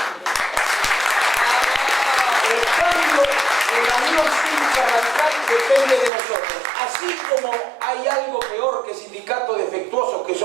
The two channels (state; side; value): drops out; left; at 6.1 s